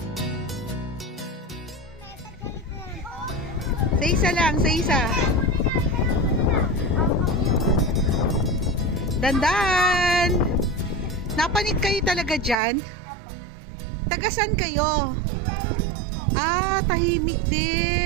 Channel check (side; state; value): left; drops out; at 12.6 s